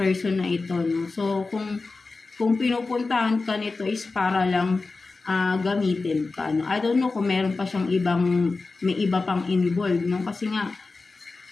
na ito, no? So kung pinupuntahan ka nito is para lang gamitin ka, no? I don't know kung meron pa siyang may iba pang involved, no? Kasi nga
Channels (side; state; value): right; quieter; 3.8 dB